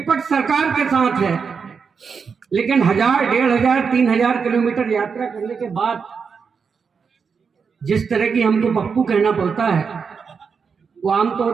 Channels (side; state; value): left; quieter; 5.8 dB